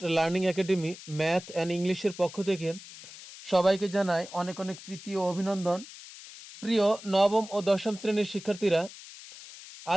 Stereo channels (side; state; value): left; noise; hiss, 16 dB below the sound